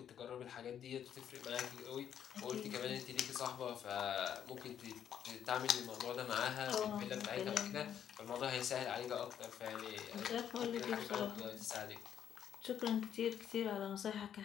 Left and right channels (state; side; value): quieter; right; 9.3 dB